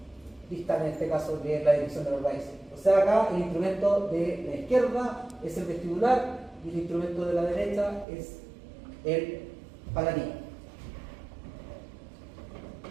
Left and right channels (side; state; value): left; drops out; at 8.1 s